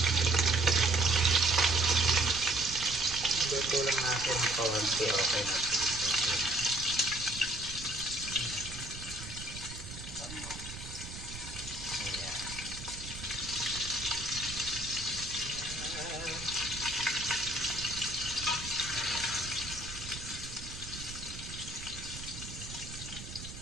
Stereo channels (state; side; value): noise; right; rumble, 11 dB below the sound